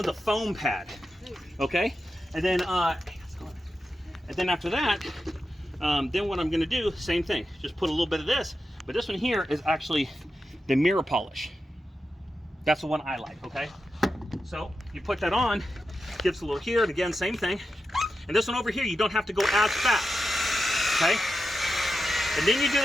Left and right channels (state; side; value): normal; both; correlation 0.90